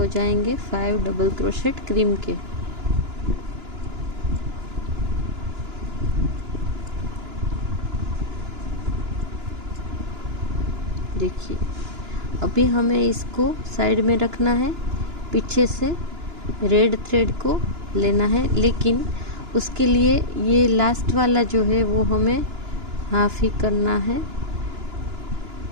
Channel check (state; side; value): late; left; 2.9 ms